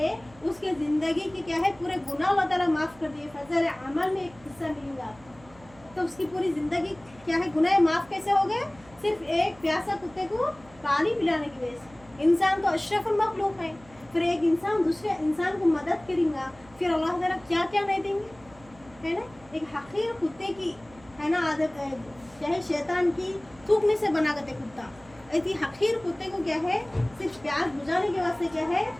उसके ज़िंदगी की क्या है पूरे गुनाह अल्लाह ताला माफ़ कर दिए। फजल अमल में एक हिस्सा मिलेगा आपको, तो उसकी पूरी ज़िंदगी क्या है गुनाह माफ़ कैसे हो गए, सिर्फ एक प्यासा कुत्ते को पानी पिलाने की वजह से। इंसान तो अशरफुल मखलूक है, फिर एक इंसान दूसरे इंसान को मदद करेगा, फिर अल्लाह ताला क्या क्या नहीं देंगे, है ना। एक हकीर कुत्ते की है ना आदत है, क्या है शैतान की थूकने से बना करते कुत्ता, ऐसी हकीर कुत्ते को क्या है सिर्फ प्यार बुझाने के वास्ते क्या है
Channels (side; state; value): right; noise; hum, 24 dB below the sound